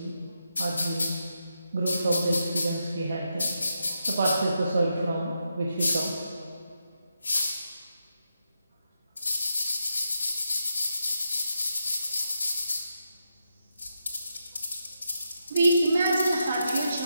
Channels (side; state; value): both; inverted; correlation -0.84